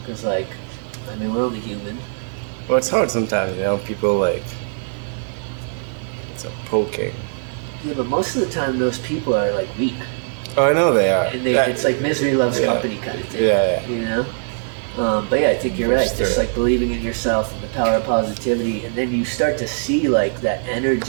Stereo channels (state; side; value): silent; left; 65 dB below the other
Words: Because I mean, we're only human. Well, it's hard sometimes, people it's a poking. Yeah, but most of the time those people are weak. Oh, I know they are. And it's misery loves company kind of thing. Yeah. You know? But yeah, I think you're right. Just Sure. believing in yourself and the power of positivity, and then you start to see that